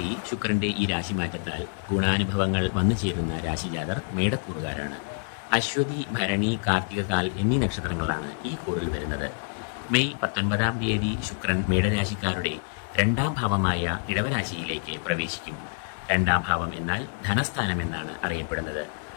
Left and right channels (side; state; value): right; silent; digital silence